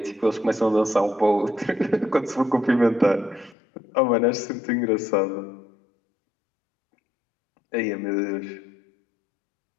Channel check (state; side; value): drops out; right; at 3.6 s